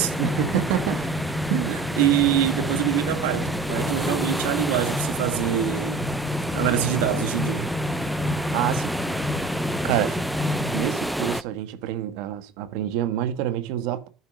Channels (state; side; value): quieter; left; 4.4 dB